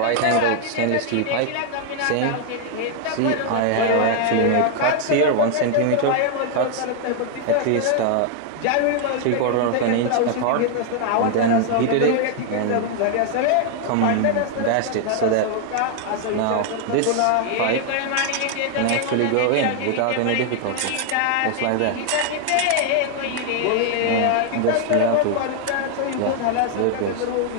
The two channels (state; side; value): different; both; correlation 0.00